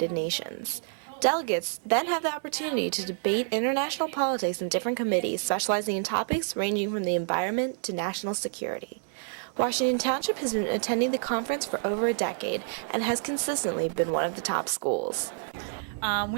Nations. Delegates then have the opportunity to debate international politics in different committees specializing in topics ranging from the environment to national security. Washington Township has been attending the conference for over a decade and has consistently been one of the top schools.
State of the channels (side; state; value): left; silent; 59 dB below the other